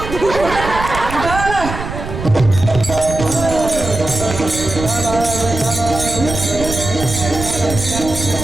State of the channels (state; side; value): noise; right; rumble, 8 dB below the sound